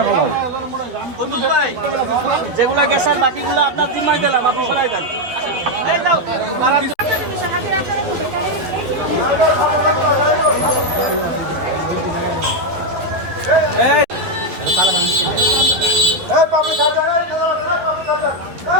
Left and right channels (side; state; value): left; late; 12 ms